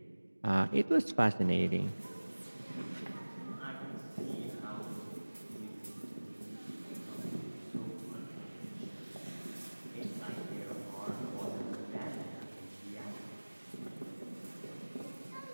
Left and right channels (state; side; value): inverted; both; correlation -1.00